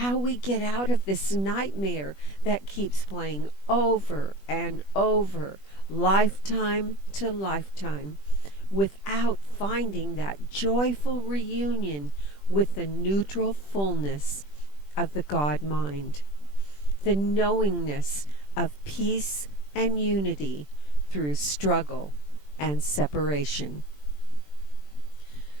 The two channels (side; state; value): right; late; 20 ms